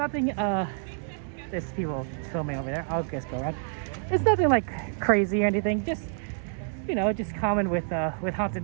there's people filming over there. I'll just go around. It's nothing like crazy or anything, just, you know, just common with Haunted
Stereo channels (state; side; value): silent; left; 59 dB below the other